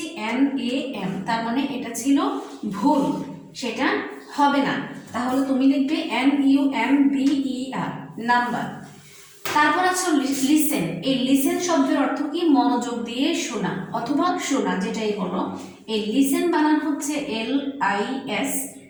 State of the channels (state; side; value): identical; both; correlation 1.00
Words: NAM, তার মানে এটা ছিল ভুল, সেটা হবে না। তাহলে তুমি লিখবে NUMBER, নাম্বার। তারপর আছে লিসেন। এই লিসেন শব্দের অর্থ কি? মনোযোগ দিয়ে শোনা অথবা শোনা, যেটাই বলো। এই লিসেন বানান হচ্ছে